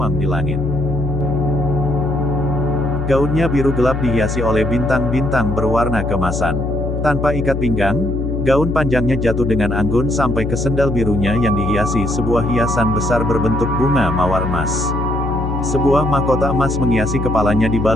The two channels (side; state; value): left; noise; hum, 3 dB below the sound